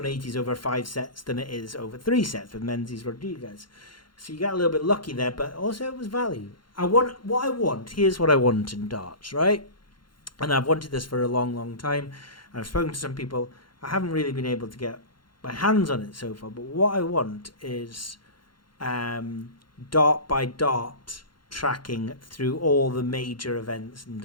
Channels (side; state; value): right; late; 0.72 ms